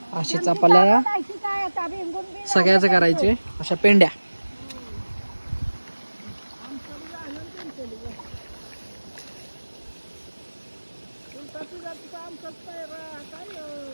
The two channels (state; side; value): inverted; both; correlation -1.00